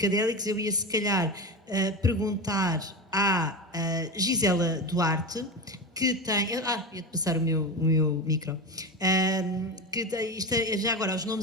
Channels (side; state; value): both; normal; correlation 0.22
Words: eu ia se calhar perguntar à Gisela Duarte, que tem... ia-te passar o meu micro. Já agora, os